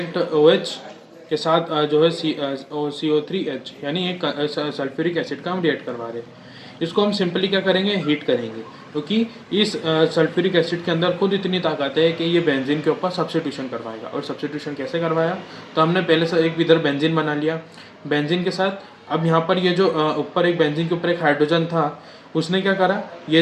OH के साथ जो है CO3H यानी एक सल्फ्यूरिक एसिड का हम रिएक्ट करवा रहे हैं। इसको हम सिंपली क्या करेंगे, हीट करेंगे, क्योंकि इस सल्फ्यूरिक एसिड के अंदर खुद इतनी ताकत है कि ये बेंजीन के ऊपर सब्स्टिट्यूशन करवाएगा। और सब्स्टिट्यूशन कैसे करवाया, तो हमने पहले से एक इधर बेंजीन बना लिया, बेंजीन के साथ अब यहाँ पर ये जो ऊपर एक बेंजीन के ऊपर एक हाइड्रोजन था उसने क्या करा,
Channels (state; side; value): identical; both; correlation 1.00